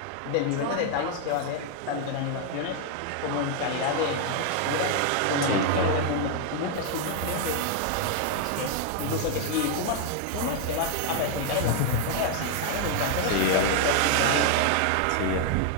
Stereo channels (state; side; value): different; both; correlation 0.00